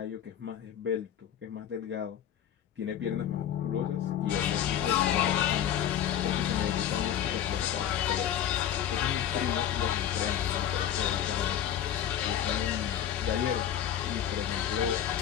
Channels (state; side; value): quieter; right; 10.2 dB